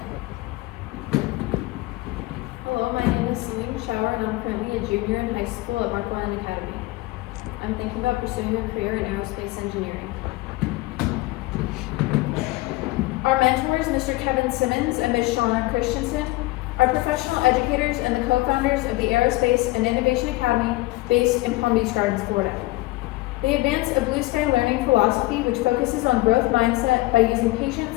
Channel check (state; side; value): quieter; right; 20.4 dB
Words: Hello, my name is Celine Schauer, and I'm currently a junior in high school at Marquand Academy. I'm thinking about pursuing a career in aerospace engineering. Our mentors, Mr. Kevin Simmons and Ms. Shauna Christensen, are professional educators and the co-founders of the Aerospace and Innovation Academy based in Palm Beach Gardens, Florida. They advance a blue sky learning philosophy which focuses on growth mindset by using